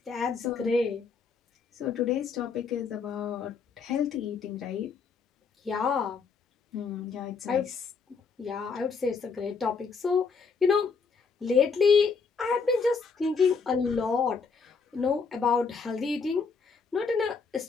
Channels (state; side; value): quieter; right; 5.2 dB